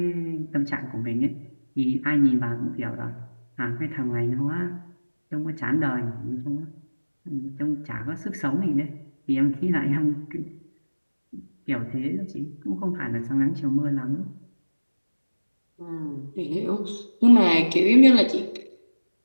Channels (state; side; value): inverted; both; correlation -1.00